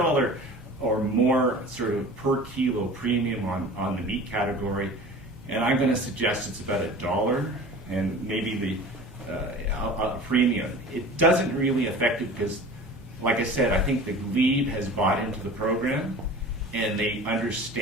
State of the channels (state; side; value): normal; both; correlation 0.40